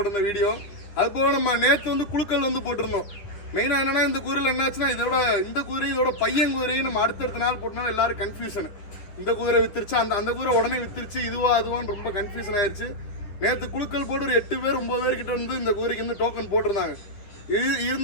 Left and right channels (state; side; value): late; right; 9.9 ms